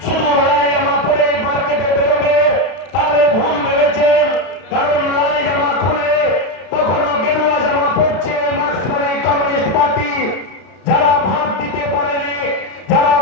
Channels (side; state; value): right; late; 32 ms